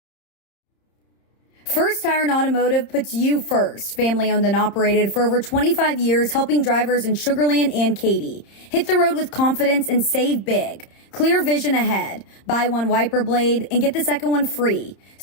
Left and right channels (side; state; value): right; late; 30 ms